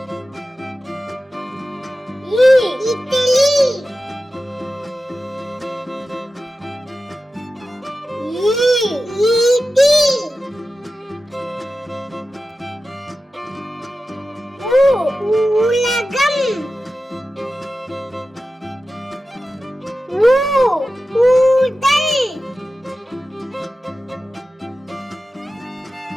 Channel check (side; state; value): both; normal; correlation 0.94